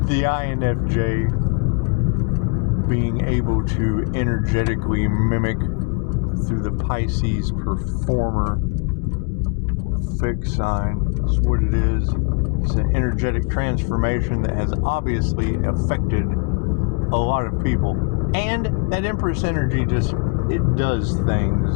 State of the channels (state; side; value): quieter; right; 34.4 dB